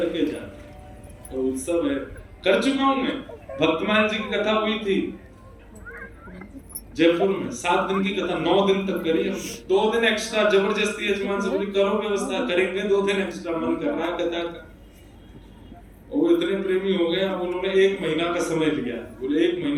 जाते। तो उत्सव है, कर चुका हूं मैं। भक्तमान जी की कथा हुई थी जयपुर में, 7 दिन की कथा 9 दिन तक करी हम। 2 दिन एक्स्ट्रा जबरदस्ती यजमान से बोली करो व्यवस्था, करेंगे 2 दिन एक्स्ट्रा, मन कर रहा है कथा का। वो इतने प्रेमी हो गए, अब उन्होंने 1 महीना का समय लिया, बोले 1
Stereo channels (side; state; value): both; identical; correlation 1.00